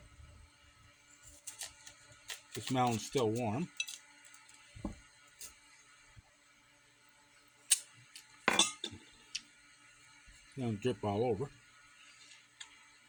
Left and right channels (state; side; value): identical; both; correlation 1.00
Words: This melon's still warm. It's gonna drip all over.